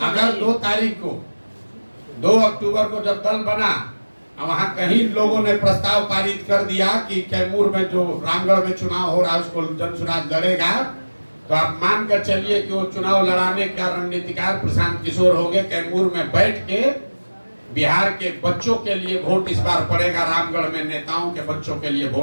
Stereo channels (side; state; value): both; inverted; correlation -1.00